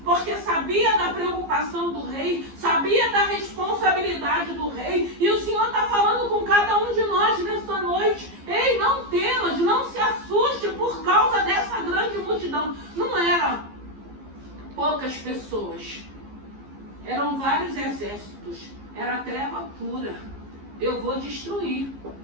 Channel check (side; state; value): left; late; 15 ms